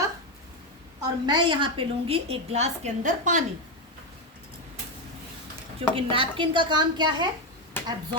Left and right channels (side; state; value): both; normal; correlation 0.08